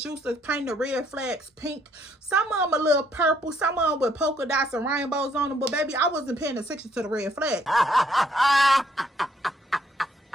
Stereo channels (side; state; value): both; normal; correlation 0.69